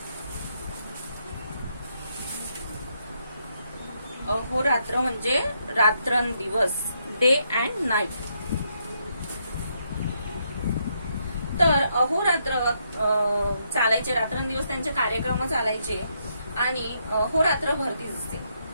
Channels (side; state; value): both; inverted; correlation -0.77